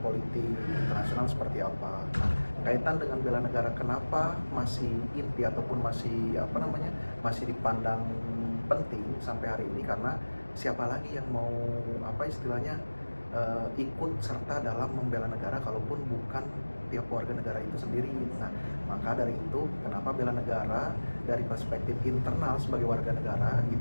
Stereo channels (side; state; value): both; inverted; correlation -1.00